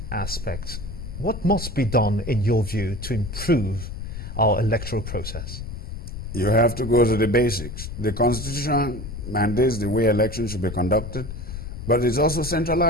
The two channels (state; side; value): noise; left; rumble, 8 dB below the sound